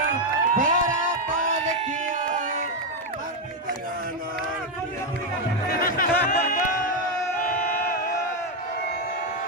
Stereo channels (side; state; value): both; normal; correlation 0.04